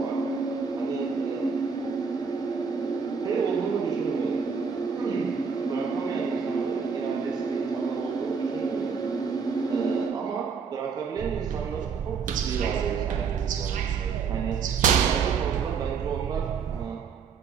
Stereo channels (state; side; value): quieter; left; 5.8 dB